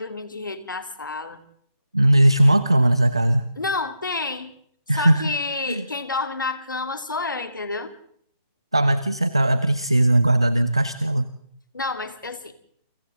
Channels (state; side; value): inverted; both; correlation -0.87